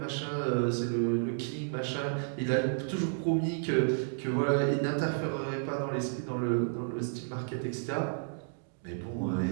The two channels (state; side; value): silent; left; digital silence